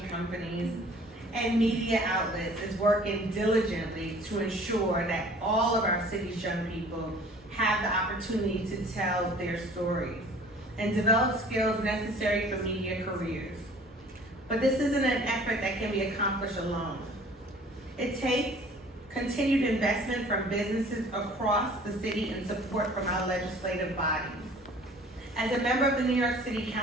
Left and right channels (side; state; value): both; normal; correlation 0.50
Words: companies, and media outlets is working diligently to ensure that all of our city's young people have the opportunity to tell their stories and develop skills necessary for media careers. But this isn't an effort that can be accomplished alone. It takes continued investment from businesses across the city and support from our legislative bodies. As a member of the New York City